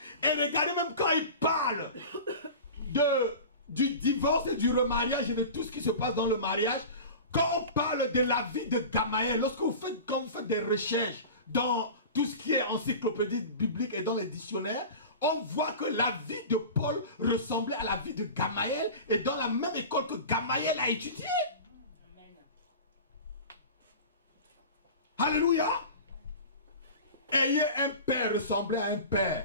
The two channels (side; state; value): both; inverted; correlation -0.34